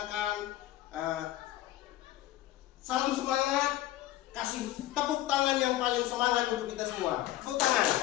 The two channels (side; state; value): right; quieter; 14.6 dB